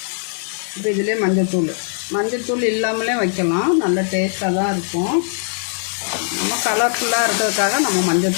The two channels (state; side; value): silent; right; digital silence